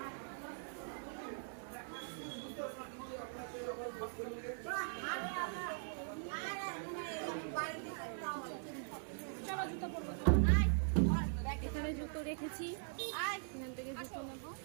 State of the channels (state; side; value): silent; left; digital silence